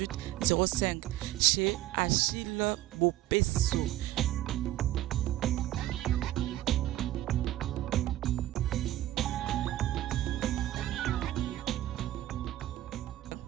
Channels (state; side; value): quieter; left; 14.5 dB